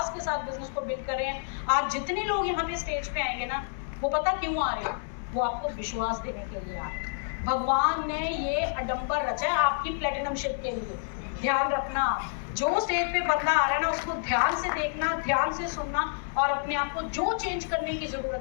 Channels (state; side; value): silent; right; digital silence